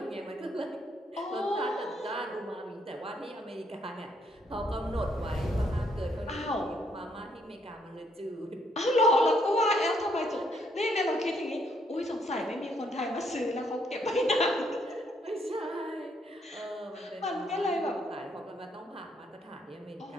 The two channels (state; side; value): normal; both; correlation 0.71